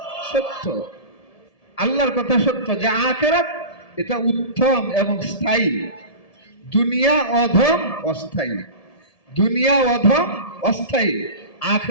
সত্য। আল্লাহর কথা সত্য যে আখিরাত এটা উত্তম এবং স্থায়ী, দুনিয়া অধম অস্থায়ী। দুনিয়া অধম অস্থায়ী,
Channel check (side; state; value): right; late; 1.7 ms